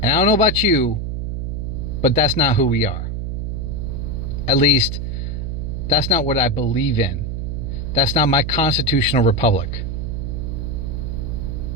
And I don't know about you, but that's not who we are. At least, that's not what I believe in. That's not my constitutional republic.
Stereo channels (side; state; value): right; noise; hum, 3 dB below the sound